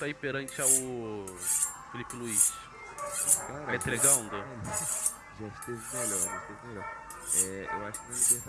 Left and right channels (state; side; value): identical; both; correlation 1.00